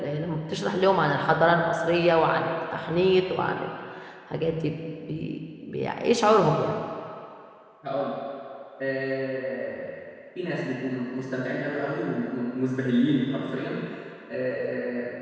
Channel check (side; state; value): both; identical; correlation 1.00